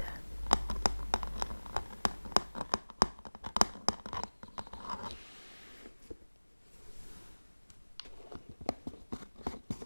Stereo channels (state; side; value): inverted; both; correlation -1.00